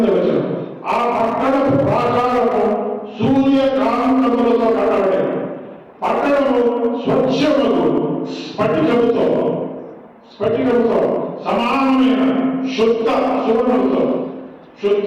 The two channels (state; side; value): identical; both; correlation 1.00